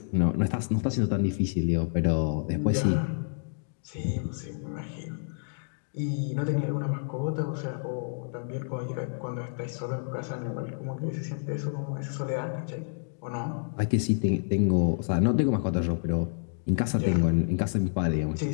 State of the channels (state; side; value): silent; right; digital silence